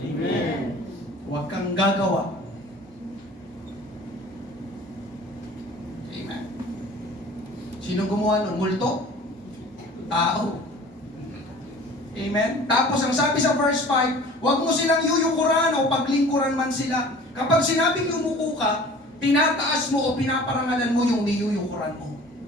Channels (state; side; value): normal; both; correlation 0.45